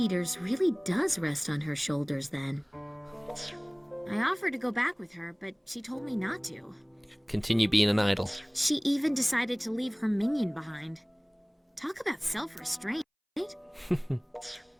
really does rest on her shoulders then. I offered to go back with her, but she told me not to. Continue being an idol. She even decided to leave her minion behind. Talk about self-restraint, right?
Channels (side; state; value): both; identical; correlation 1.00